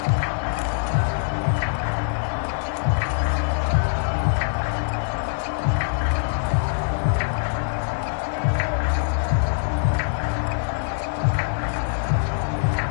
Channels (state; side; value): silent; right; digital silence